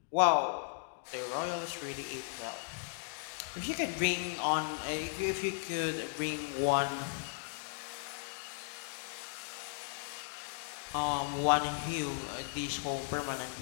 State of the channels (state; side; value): silent; right; digital silence